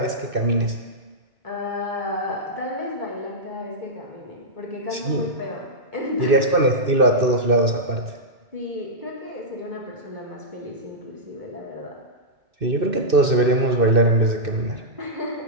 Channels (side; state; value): left; late; 2.6 ms